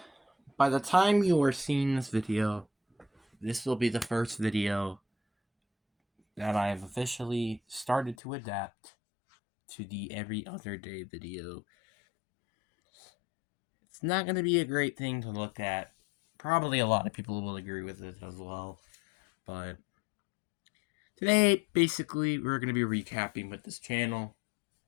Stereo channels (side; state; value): right; drops out; at 8.2 s